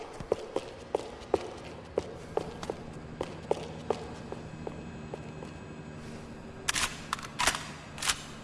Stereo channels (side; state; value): both; identical; correlation 1.00